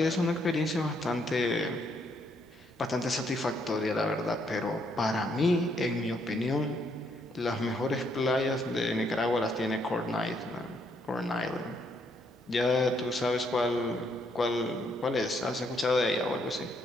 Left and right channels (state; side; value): normal; both; correlation 0.72